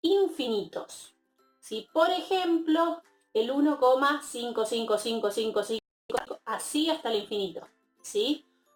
infinitos. ¿Sí? Por ejemplo, el 1,55555, así hasta el infinito. ¿Sí?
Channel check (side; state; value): both; identical; correlation 1.00